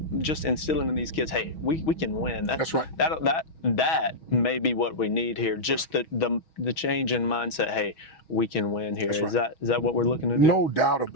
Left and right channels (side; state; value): right; late; 6.2 ms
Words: just instilling in these kids, hey, we can win. That's right. That may be what we need here. Just the change in mindset. Hey, we can win here. Is that what we're looking to do? No doubt